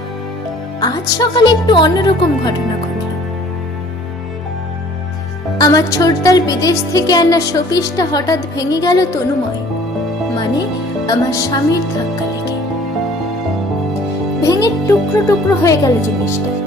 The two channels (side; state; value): both; normal; correlation 0.53